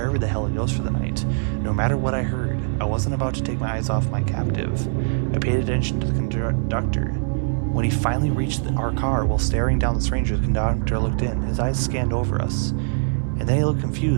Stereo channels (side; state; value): left; silent; digital silence